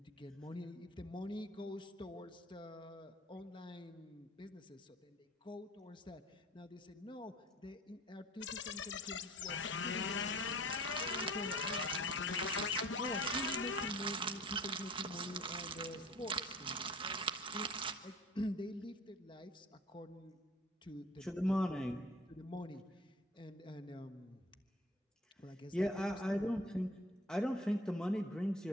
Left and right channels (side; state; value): both; normal; correlation 0.47